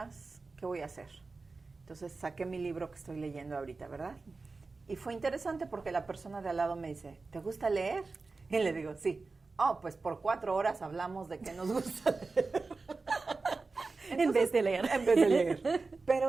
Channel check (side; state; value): left; quieter; 3.9 dB